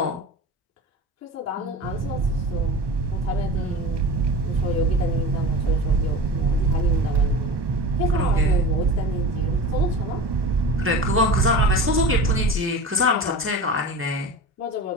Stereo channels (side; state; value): both; normal; correlation 0.32